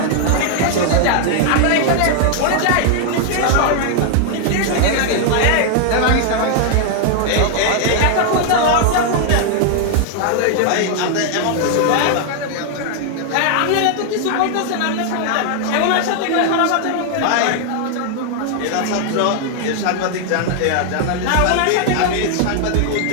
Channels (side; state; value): both; different; correlation 0.00